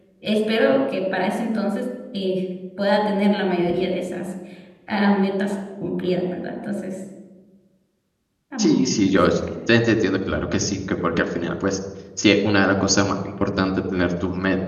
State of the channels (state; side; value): identical; both; correlation 1.00